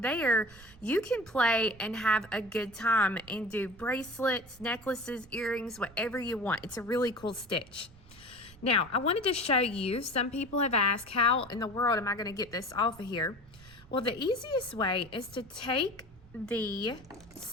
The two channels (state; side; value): noise; right; rumble, 23 dB below the sound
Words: there you can play and have a good time and do bracelets, necklaces, earrings, whatever you want. It's a really cool stitch. Now I wanted to show you, some people have asked, how in the world am I going to get this off of here? Well, the easiest way is to take the